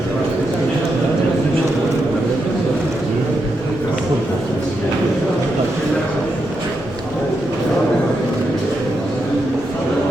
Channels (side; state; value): both; normal; correlation 0.84